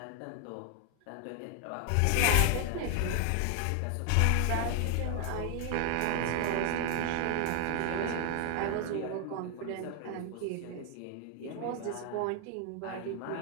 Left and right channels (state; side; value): different; both; correlation 0.00